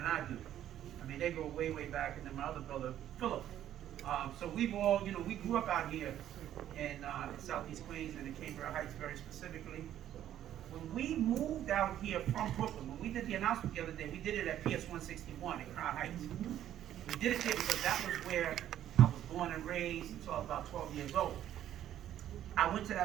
I do. I mean, they go way, way back, and then my other brother, Philip. So we've all, we grew up out here in Southeast Queens and in Cambria Heights very specifically. When we moved out here from Brooklyn, when we did the announcement the other day, we did it at PS 161 in Crown Heights. We did it here because that was where I was born and raised until I was about 12 years old. I went to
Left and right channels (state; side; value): quieter; left; 11.5 dB